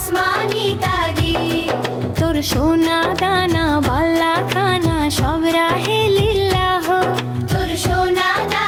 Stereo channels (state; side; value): identical; both; correlation 1.00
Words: তাগে। তোর সোনা দানা বাল্লা খানা সব রাহে লিল্লাহ। তোর সোনা